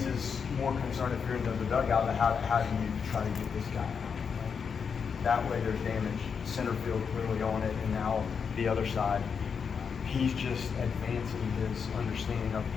more concern if you're in the dugout. How do you try to get this guy out? That way there's damage. Center field clearly on it, and now the other side. He's just advancing his understanding of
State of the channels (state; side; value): quieter; right; 6.3 dB